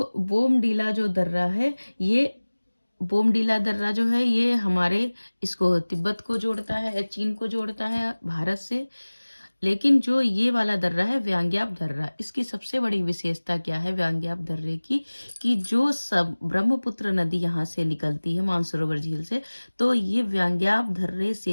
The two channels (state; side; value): inverted; both; correlation -1.00